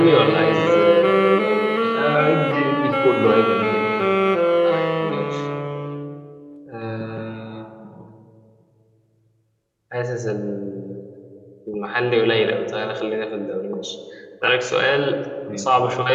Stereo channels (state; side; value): identical; both; correlation 1.00